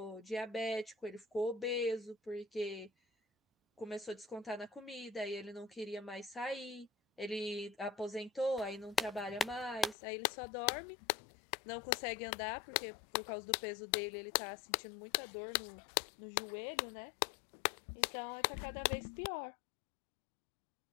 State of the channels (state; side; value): drops out; right; at 10.0 s